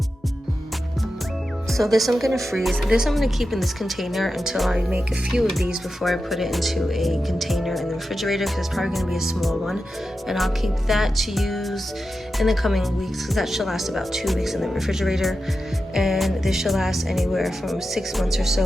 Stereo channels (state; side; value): normal; both; correlation 0.91